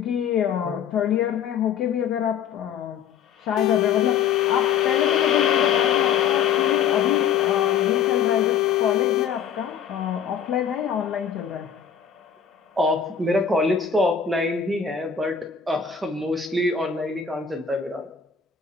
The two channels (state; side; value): quieter; right; 7.7 dB